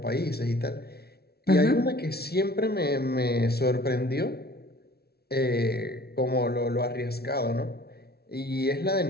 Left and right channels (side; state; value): right; late; 0.46 ms